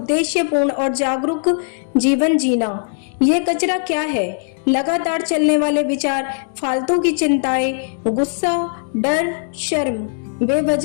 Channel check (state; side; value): silent; right; digital silence